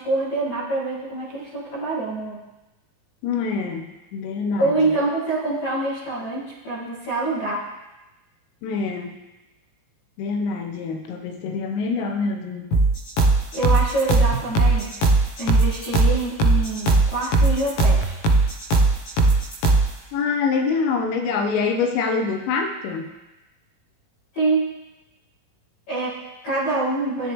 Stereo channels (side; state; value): right; late; 18 ms